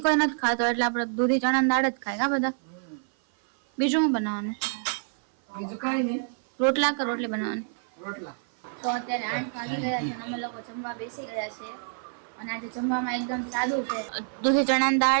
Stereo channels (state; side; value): silent; left; 56 dB below the other